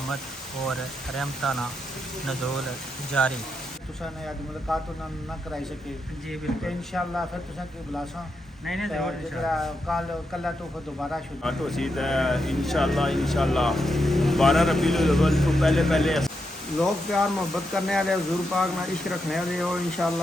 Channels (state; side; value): normal; both; correlation 0.84